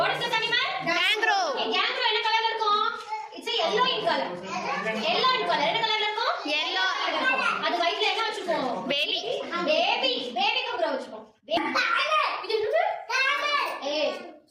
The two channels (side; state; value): both; identical; correlation 1.00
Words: is this animal? Kangaroo. Okay, kangaroo என்ன கலர்ல இருக்கும்? It's a yellow in color. Yellow in color. என்ன கலர்ல இருக்கும்? Yellow. அது வயித்துல என்ன வச்சிருக்கோம்? Baby. Baby. Baby kangaroo வச்சிருக்கோம். இது என்னது? Camel. Hey,